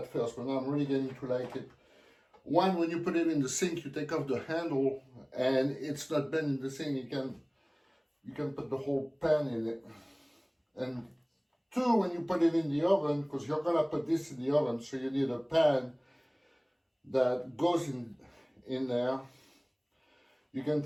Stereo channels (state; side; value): identical; both; correlation 1.00